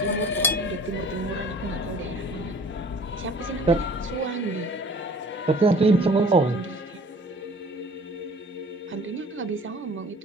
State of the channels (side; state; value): both; normal; correlation 0.49